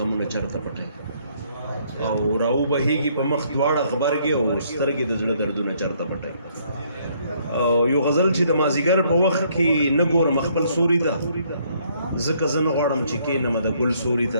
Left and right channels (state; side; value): inverted; both; correlation -0.67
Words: چرته پټي او راو بهیږي په مخ دواړه غبرګي او سترګې د زړه دردونه چرته پټي او یو غزل چې د مازیګر په وخت کې نه ګورم خپل سوري ته ځکه زه نه غواړم چې کښېنم د ګل سوري